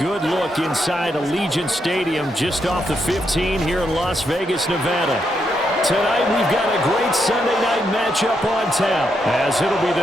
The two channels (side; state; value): both; normal; correlation 0.80